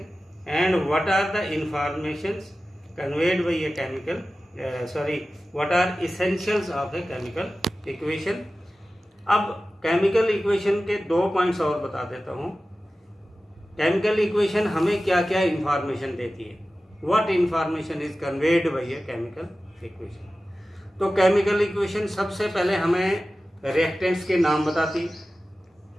and what are the informations conveyed by a chemical what are essentials of a chemical equation। अब केमिकल इक्वेशन के 2 पॉइंट्स और बता देता हूँ। केमिकल इक्वेशन हमें क्या क्या इंफॉर्मेशन देती है, what information is conveyed by a chemical equation. तो केमिकल इक्वेशन सबसे पहले हमें रिएक्टेंट्स के नाम बताती,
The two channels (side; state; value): both; normal; correlation 0.95